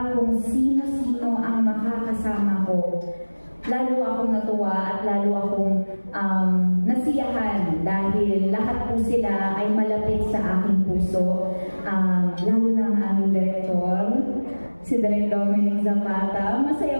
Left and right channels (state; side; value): inverted; both; correlation -1.00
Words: kung sino-sino ang makakasama ko, lalo akong natuwa at lalo akong nasiyahan dahil lahat po sila ay malapit sa aking puso. Lalo na ang aming direktor, si Direk Dominic Zapata.